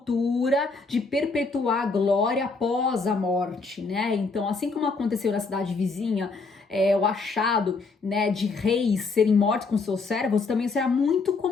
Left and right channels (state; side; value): quieter; right; 4.1 dB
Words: de perpetuar a glória após a morte, né? Então, assim como aconteceu na cidade vizinha, o achado, né, de reis serem mortos com seus servos também será muito